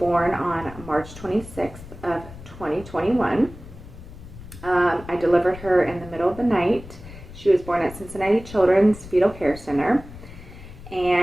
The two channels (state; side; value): noise; left; rumble, 16 dB below the sound